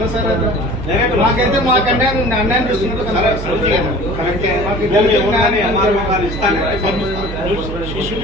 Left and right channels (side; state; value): right; noise; hum, 8 dB below the sound